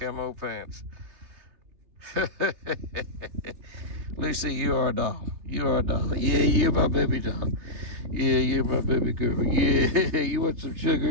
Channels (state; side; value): late; left; 3.2 ms